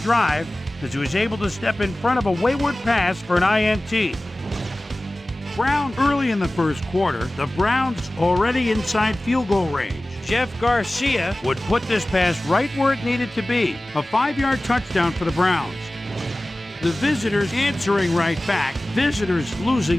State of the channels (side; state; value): both; normal; correlation 0.97